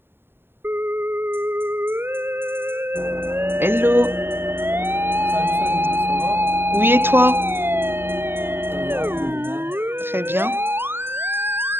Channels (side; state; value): left; late; 0.11 ms